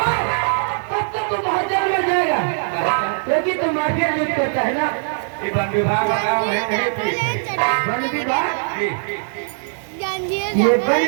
तब तक तू बहुत जेल में जाएगा, क्योंकि तू माफिया लूट करता है ना। ये वन विभाग का काम है, नहीं पीते। वन विभाग? ये ये वन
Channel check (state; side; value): silent; left; 63 dB below the other